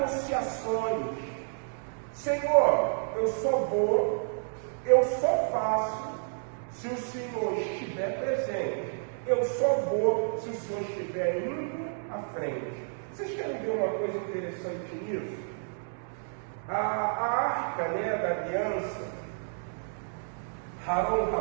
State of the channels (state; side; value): silent; left; 58 dB below the other